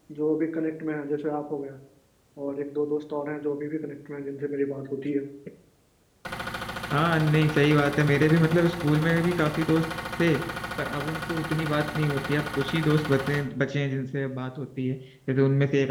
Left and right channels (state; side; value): identical; both; correlation 1.00